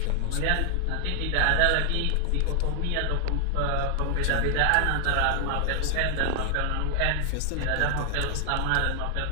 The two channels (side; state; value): both; different; correlation 0.00